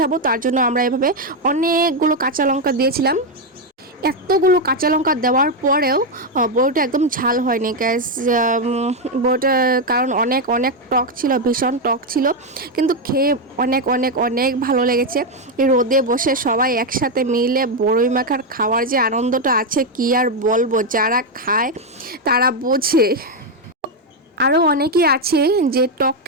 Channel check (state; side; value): normal; both; correlation 0.04